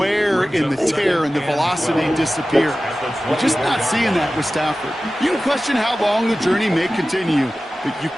and the tear and the velocity disappear. We're just not seeing that with Stafford. You can question how long the journey may continue, but you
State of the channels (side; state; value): both; normal; correlation 0.96